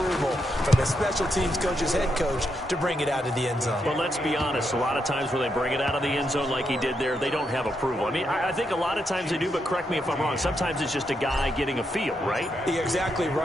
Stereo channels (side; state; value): both; normal; correlation 0.81